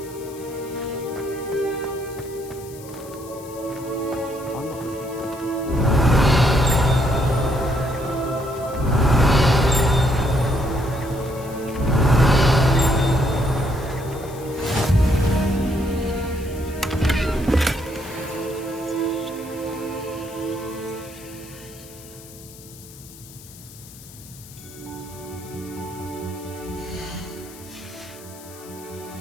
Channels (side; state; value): left; noise; hiss, 19 dB below the sound